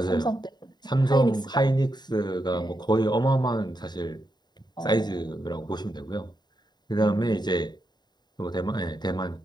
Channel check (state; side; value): late; right; 0.21 ms